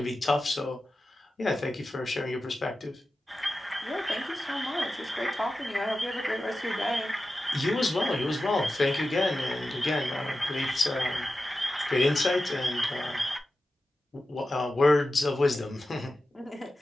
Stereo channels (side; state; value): both; normal; correlation 0.93